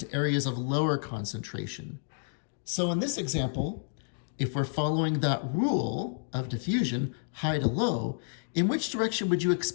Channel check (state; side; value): silent; right; digital silence